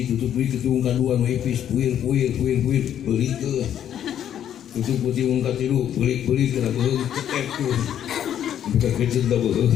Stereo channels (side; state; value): right; quieter; 10.1 dB